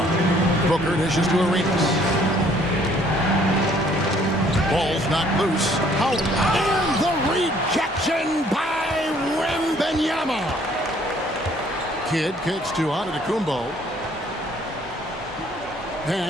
it. Booker dishes to Arenas. Ball's not loose. Out. And the rejection by Wembanyama. Kidd kicks to Antetokounmpo.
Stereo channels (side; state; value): both; normal; correlation 0.61